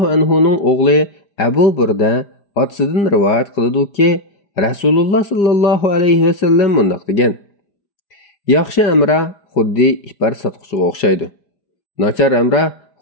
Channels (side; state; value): right; late; 5.0 ms